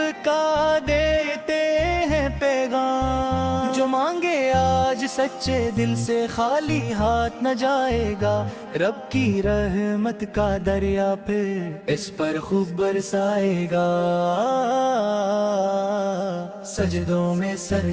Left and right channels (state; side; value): identical; both; correlation 1.00